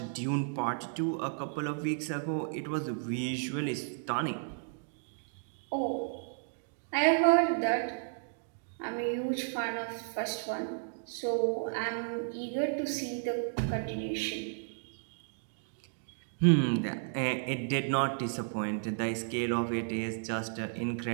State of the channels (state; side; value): silent; left; digital silence